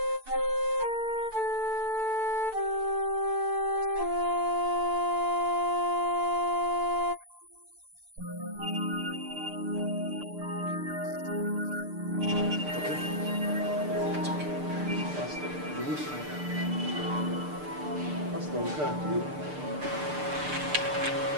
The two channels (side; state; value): left; late; 6.7 ms